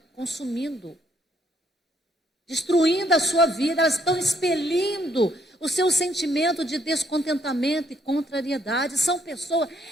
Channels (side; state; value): both; normal; correlation 0.71